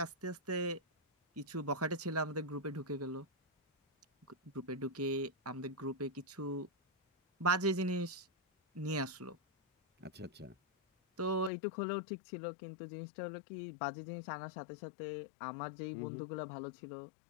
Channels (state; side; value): drops out; right; at 11.5 s